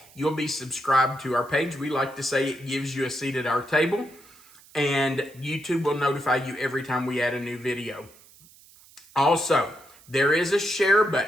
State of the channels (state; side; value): noise; right; hiss, 25 dB below the sound